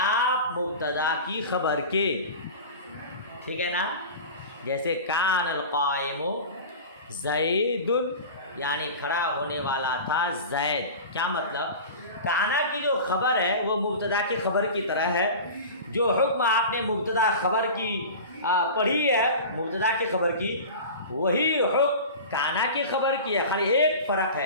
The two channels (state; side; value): inverted; both; correlation -0.34